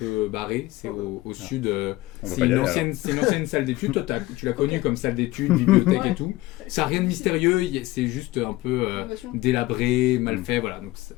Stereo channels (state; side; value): quieter; right; 18.6 dB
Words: barré, c'est au sud, On va c'est pas y une aller, ancienne salle d'études, toi tu l'as connue comme salle d'études, bibliothèque et Ouais. tout, ça n'a rien de mystérieux, c'est juste un peu Innovation. délabré, mal fait, voilà, donc